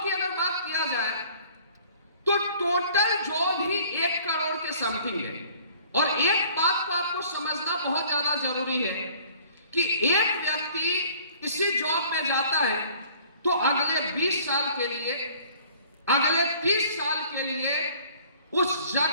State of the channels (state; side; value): inverted; both; correlation -0.53